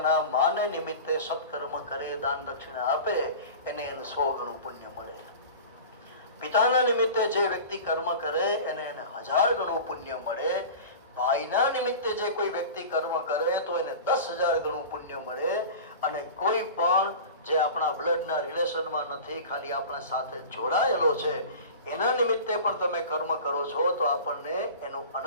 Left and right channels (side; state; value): both; inverted; correlation -0.35